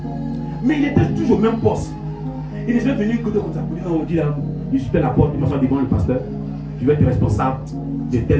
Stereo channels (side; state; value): both; identical; correlation 1.00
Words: Mais il était toujours au même poste. Il est jamais venu côté comme ça. Pour dire, non, on dit là, il suit la porte, il m'assoit devant le pasteur. Je vais être responsable de